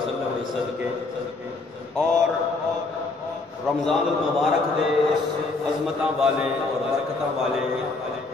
کے صدقے اور رمضان المبارک دے عظمتاں والے اور برکتاں والے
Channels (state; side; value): quieter; right; 3.6 dB